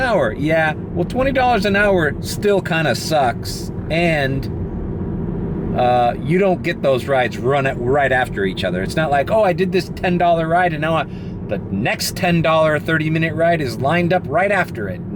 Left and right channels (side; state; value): both; identical; correlation 1.00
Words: Yeah, well, $20 an hour still kind of sucks. And you don't get those rides right after each other. It's not like, oh, I did this $10 ride and now the next $10 30-minute ride is lined up right after it.